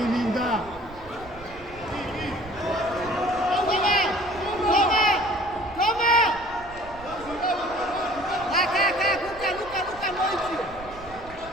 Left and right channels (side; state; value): right; noise; rumble, 18 dB below the sound